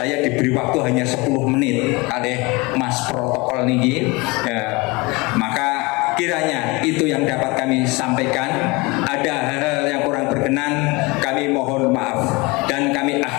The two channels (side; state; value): right; quieter; 25.1 dB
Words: diberi waktu hanya 10 menit oleh Mas Protokol niki. Maka kiranya itu yang dapat kami sampaikan. Ada hal-hal yang kurang berkenan, kami mohon maaf. Dan kami